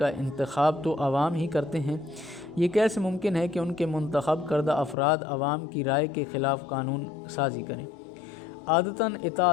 انتخاب تو عوام ہی کرتے ہیں۔ یہ کیسے ممکن ہے کہ ان کے منتخب کردہ افراد عوام کی رائے کے خلاف قانون سازی کریں؟ عادتاً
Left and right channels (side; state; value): right; drops out; at 5.0 s